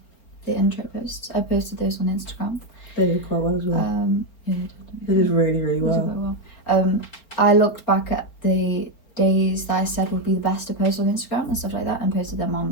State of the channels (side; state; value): right; late; 4.4 ms